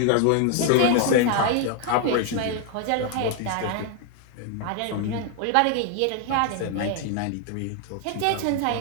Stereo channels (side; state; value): both; different; correlation 0.00